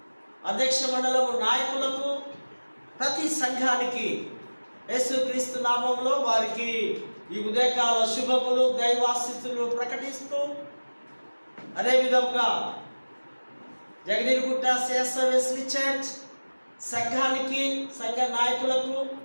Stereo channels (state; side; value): inverted; both; correlation -1.00